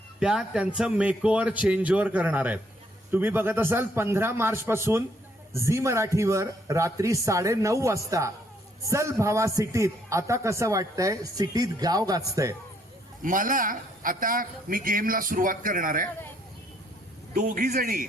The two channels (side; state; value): both; normal; correlation 0.69